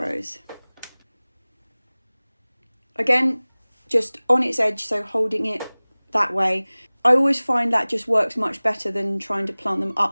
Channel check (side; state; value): both; inverted; correlation -1.00